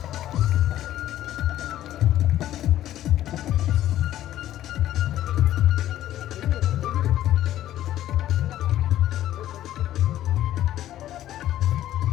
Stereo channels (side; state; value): right; quieter; 13.0 dB